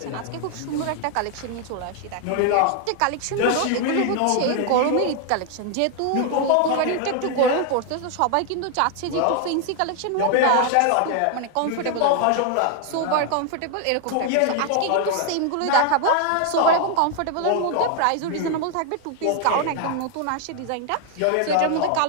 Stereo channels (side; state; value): both; different; correlation 0.00